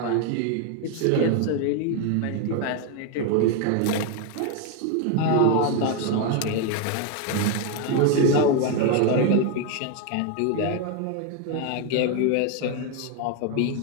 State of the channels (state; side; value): different; both; correlation 0.01